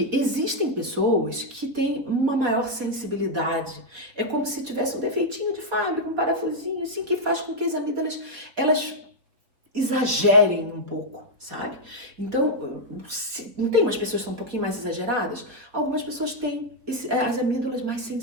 existem pessoas que têm uma maior sensibilidade. É como se tivesse um defeitinho de fábrica, um parafusinho, assim, que faz com que as amígdalas, elas exagerem um pouco, sabe? Então, não tem umas pessoas que são um pouquinho mais exageradas? Algumas pessoas têm as amígdalas mais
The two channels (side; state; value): left; late; 4.0 ms